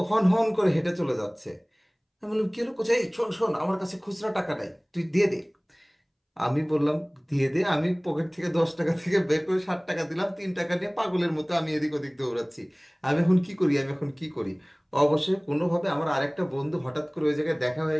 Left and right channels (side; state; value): both; identical; correlation 1.00